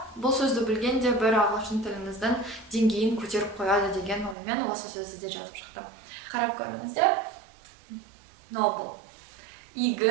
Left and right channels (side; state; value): left; drops out; at 4.4 s